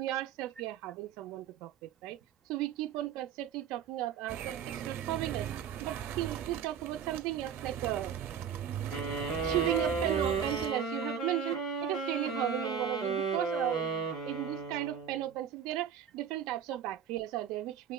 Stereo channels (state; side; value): quieter; left; 8.1 dB